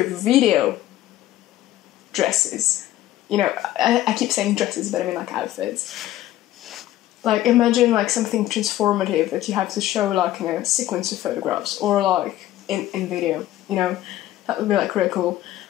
video dresses. You know, I keep saying dresses, but I mean, like, outfits. Like, imagine, like, something transformative that you have to show, like, in a sequence of photographs, or, like, in video, you know? That would be, like, really cool.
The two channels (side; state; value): right; quieter; 14.2 dB